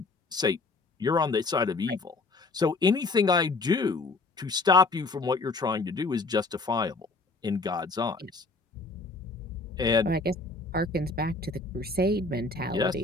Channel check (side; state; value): right; quieter; 3.5 dB